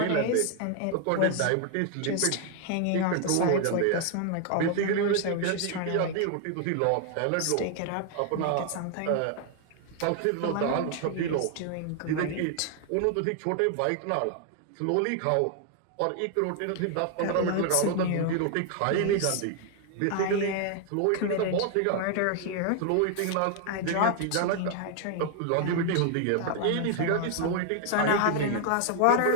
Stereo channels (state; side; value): different; both; correlation 0.00